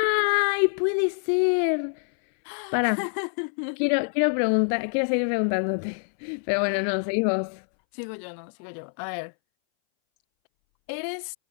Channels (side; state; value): right; silent; 61 dB below the other